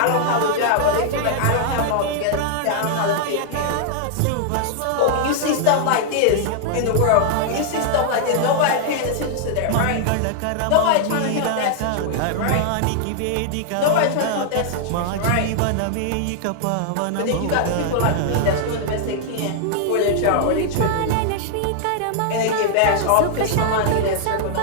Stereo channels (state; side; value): different; both; correlation -0.01